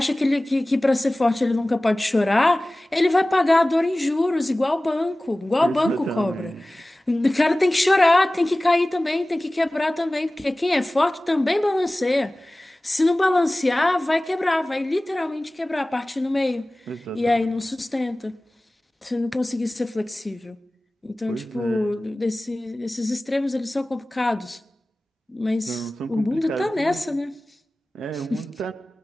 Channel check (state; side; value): normal; both; correlation 0.98